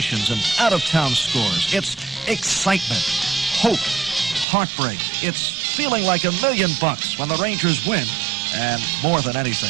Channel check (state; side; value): drops out; left; at 4.5 s